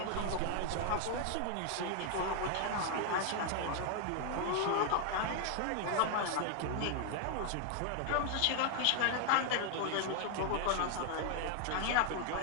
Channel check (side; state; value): both; different; correlation 0.00